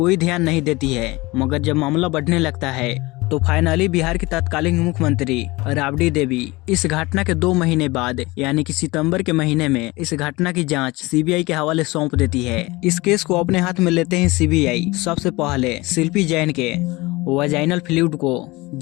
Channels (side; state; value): right; quieter; 22.1 dB